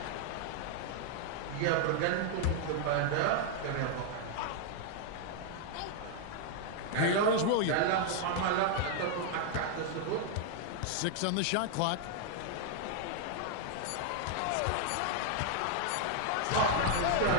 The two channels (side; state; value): both; different; correlation 0.00